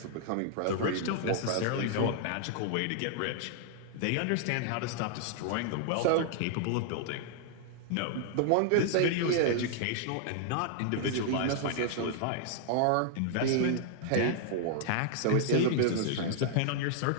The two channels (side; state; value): both; different; correlation -0.01